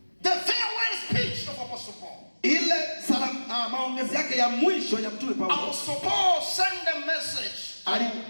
farewell speech of Apostle Paul. Ile maongezi yake ya mwisho ya mtume Paulo. Apostle Paul sent a message to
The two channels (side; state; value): both; inverted; correlation -1.00